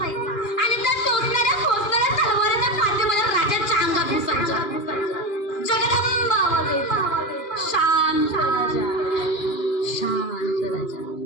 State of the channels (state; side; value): late; right; 2.4 ms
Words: आणि त्या टोचणाऱ्या तलवारीच्या पाठी माझ्या राजाच्या अंगात घुसायच्या. जगदंब आवाज यायचा. शांत राजा, शांत राजा.